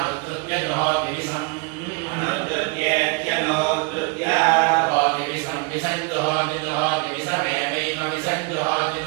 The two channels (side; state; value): left; quieter; 30.4 dB